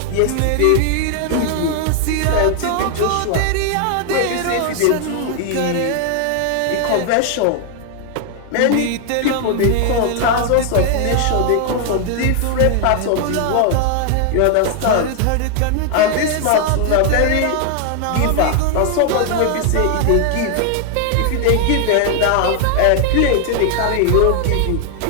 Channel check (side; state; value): both; different; correlation 0.00